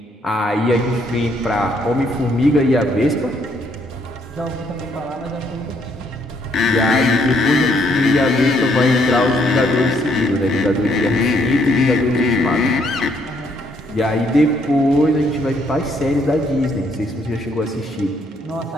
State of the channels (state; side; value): normal; both; correlation 0.69